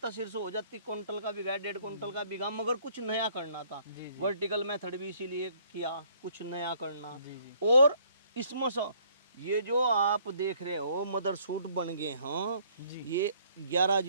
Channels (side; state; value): both; inverted; correlation -0.62